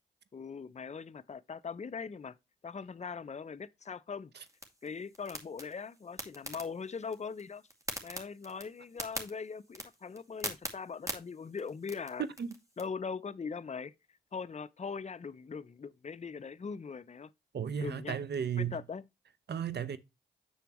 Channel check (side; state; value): both; normal; correlation 0.35